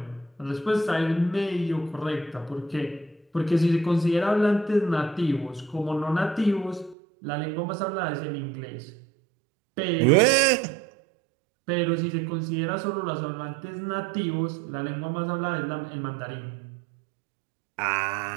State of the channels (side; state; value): left; drops out; at 7.0 s